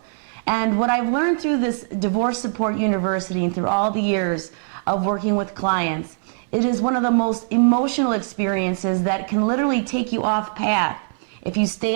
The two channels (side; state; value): left; silent; 59 dB below the other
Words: And what I've learned through this Divorce Support University and through all the years of working with clients, it is one of the most emotional experiences that can literally take you off path if you